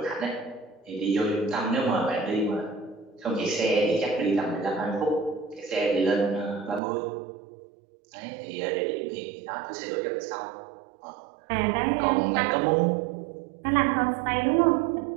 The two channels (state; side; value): drops out; left; at 6.8 s